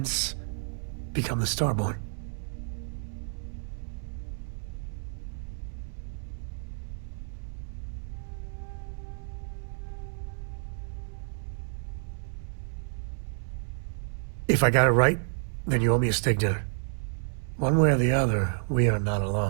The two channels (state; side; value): silent; left; 58 dB below the other